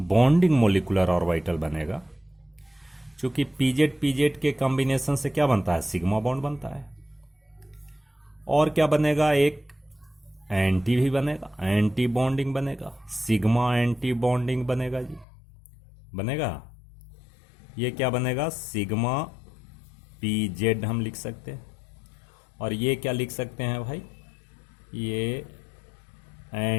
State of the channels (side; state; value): right; drops out; at 15.2 s